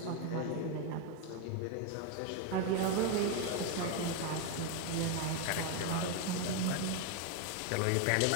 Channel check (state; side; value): different; both; correlation 0.01